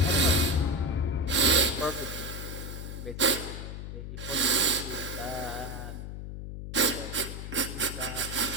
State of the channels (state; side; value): noise; left; hum, 8 dB below the sound